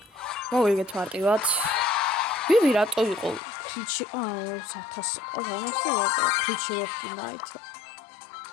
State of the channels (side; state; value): right; drops out; at 3.4 s